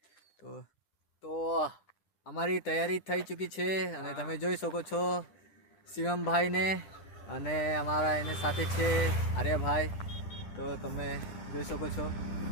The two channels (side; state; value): right; late; 10 ms